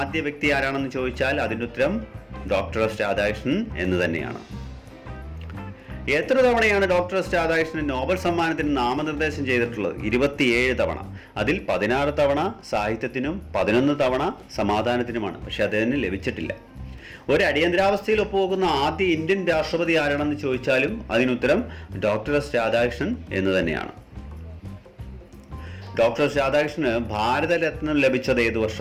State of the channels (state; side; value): identical; both; correlation 1.00